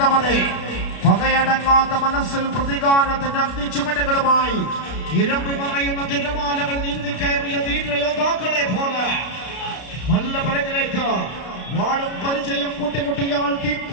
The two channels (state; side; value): late; right; 32 ms